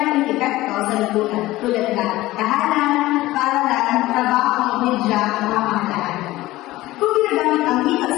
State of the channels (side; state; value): right; quieter; 17.5 dB